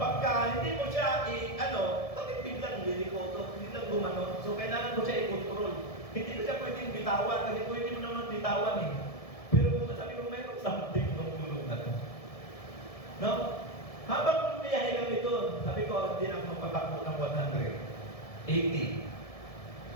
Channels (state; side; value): late; right; 1.7 ms